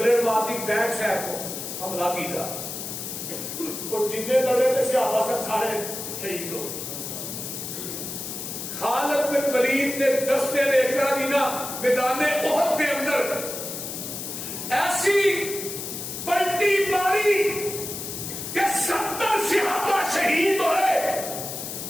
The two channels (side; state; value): left; noise; hiss, 7 dB below the sound